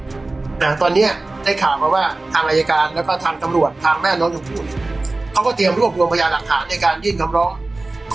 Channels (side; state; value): left; quieter; 3.1 dB